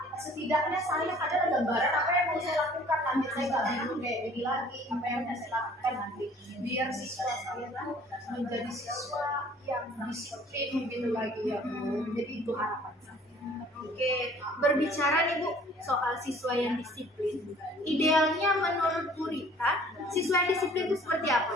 setidaknya saya ada gambaran apa yang mau saya lakukan nanti, saya nggak bingung kayak ini lagi apa yang mau saya lakukan nanti biar siswa saya tuh menjadi siswa yang disiplin gitu lagi ya Bu. Jadi itu harapan saya. Oke, berbicara nih Bu soal siswa yang disiplin, idealnya menurut Bu Rita, siswa yang disiplin itu seperti apa?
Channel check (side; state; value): both; normal; correlation 0.53